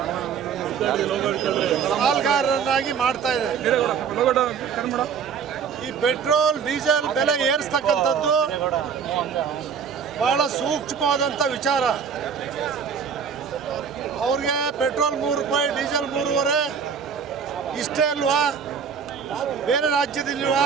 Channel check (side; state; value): left; quieter; 6.8 dB